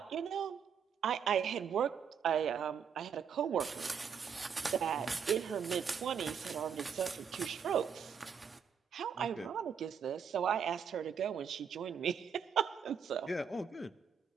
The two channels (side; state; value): left; quieter; 7.1 dB